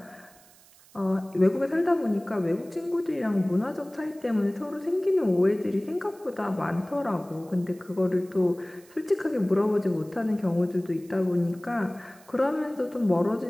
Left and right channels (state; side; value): noise; right; hiss, 26 dB below the sound